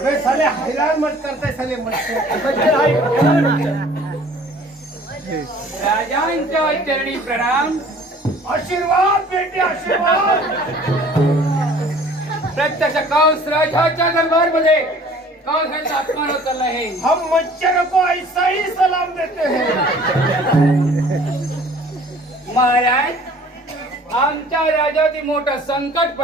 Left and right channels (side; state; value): both; normal; correlation 0.51